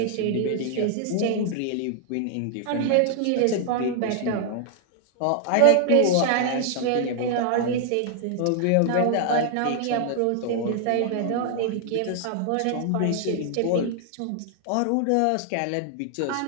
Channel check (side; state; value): both; different; correlation 0.00